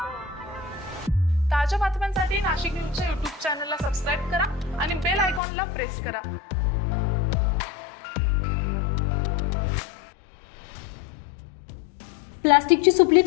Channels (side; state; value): right; drops out; at 5.4 s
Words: ताज्या बातम्यांसाठी नाशिक न्यूजच्या YouTube चॅनलला सबस्क्राईब करा आणि बेल आयकॉनला प्रेस करा। प्लास्टिकची सुपली